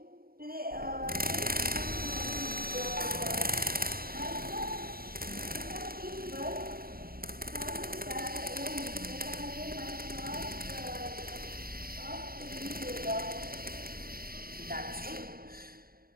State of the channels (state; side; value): late; left; 0.43 ms